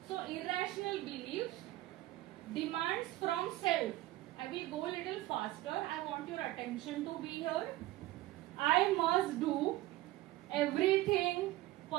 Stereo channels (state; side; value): quieter; left; 16.9 dB